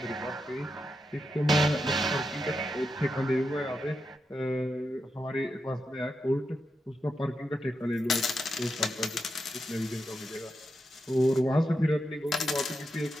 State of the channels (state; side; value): normal; both; correlation 0.86